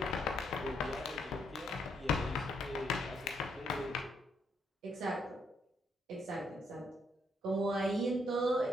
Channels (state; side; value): normal; both; correlation 0.74